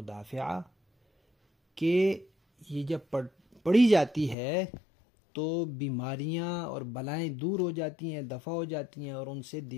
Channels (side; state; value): right; drops out; at 4.4 s